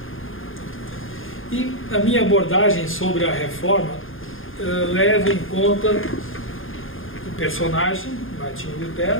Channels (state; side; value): late; right; 0.59 ms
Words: E a minha abordagem sobre a reforma leva em conta o personagem, Martinho